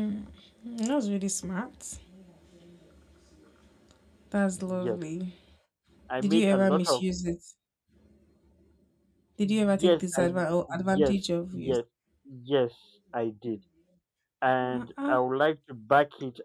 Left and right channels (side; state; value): both; identical; correlation 1.00